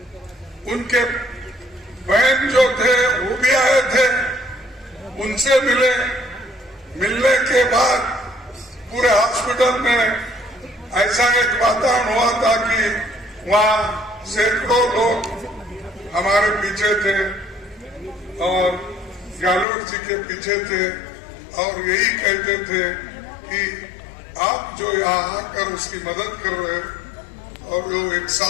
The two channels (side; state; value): right; drops out; at 19.7 s